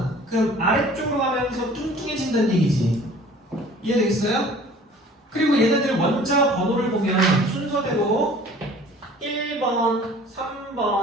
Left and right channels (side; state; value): both; normal; correlation 0.49